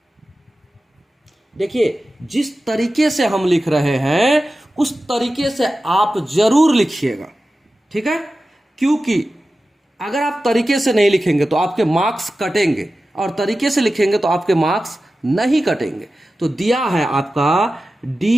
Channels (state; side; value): normal; both; correlation 0.94